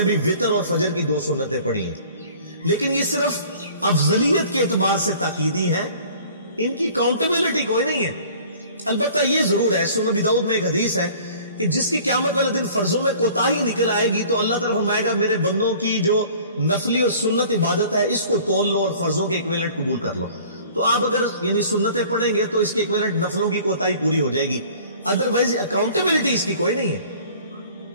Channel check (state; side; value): inverted; both; correlation -0.49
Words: بھی وتر اور فجر کی 2 سنتیں پڑھی ہیں، لیکن یہ صرف افضلیت کے اعتبار سے تاکیدی ہیں، ان کی کاؤنٹیبلٹی کوئی نہیں ہے۔ البتہ یہ ضرور ہے، سنن ابی داؤد میں ایک حدیث ہے کہ جس کی قیامت والے دن فرضوں میں کوتاہی نکل آئے گی تو اللہ تعالیٰ فرمائے گا میرے بندوں کی جو نفلی اور سنت عبادت ہے اس کو تول لو اور فرضوں کے ایکویلنٹ قبول کر لو۔ تو آپ اگر یعنی سنتیں پڑھیں گے تو اس کے ایکویلنٹ نفلوں کی کوتاہی پوری ہو جائے گی، ادروائز اکاؤنٹیبلٹی اس کی کوئی نہیں ہے،